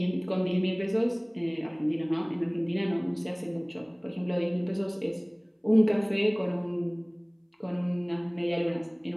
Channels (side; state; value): both; identical; correlation 1.00